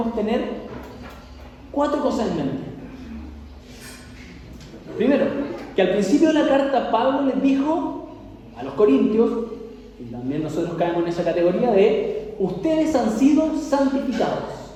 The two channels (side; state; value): both; identical; correlation 1.00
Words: tener 4 cosas en mente. Primero, que al principio de la carta Pablo les dijo a los corintios, y también nosotros caemos en esa categoría de ustedes han sido santificados.